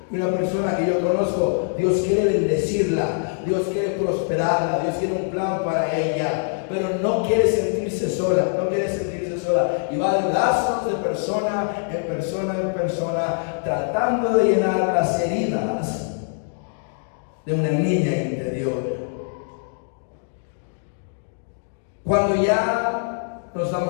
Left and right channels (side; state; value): right; silent; digital silence